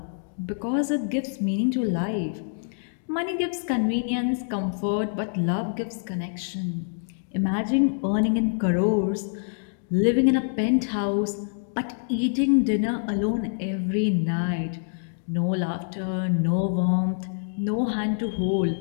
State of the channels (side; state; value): right; silent; digital silence